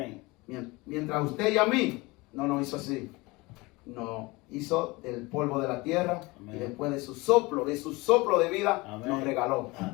Mientras usted y a mí no nos hizo así. No. hizo del polvo de la tierra. Amén. Y después de su soplo de vida, Amén. nos regaló.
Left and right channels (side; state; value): right; quieter; 23.5 dB